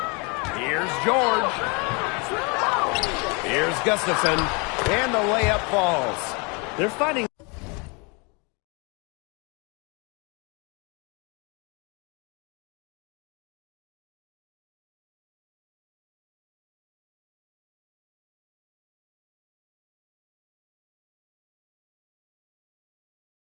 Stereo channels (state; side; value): quieter; right; 31.2 dB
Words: Here's George. Here's Gustafson. And the layup falls. They're finding